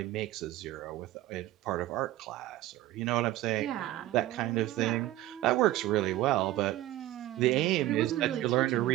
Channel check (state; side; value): quieter; left; 15.2 dB